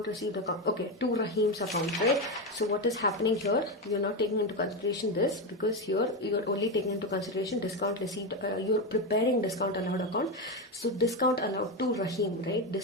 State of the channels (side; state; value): both; normal; correlation 0.13